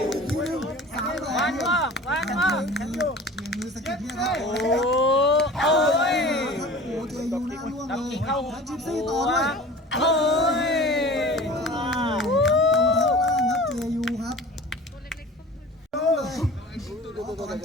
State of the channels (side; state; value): both; normal; correlation 0.40